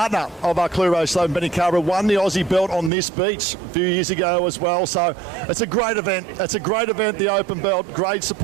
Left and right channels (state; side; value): drops out; left; at 2.9 s